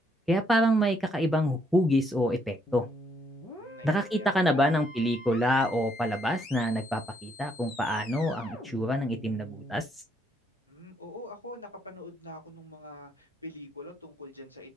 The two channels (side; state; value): both; normal; correlation 0.72